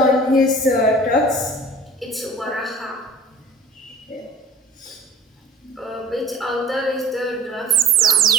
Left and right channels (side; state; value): both; normal; correlation 0.45